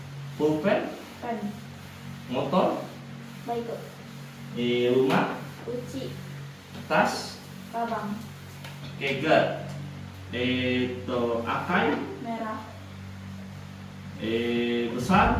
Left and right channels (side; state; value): both; identical; correlation 1.00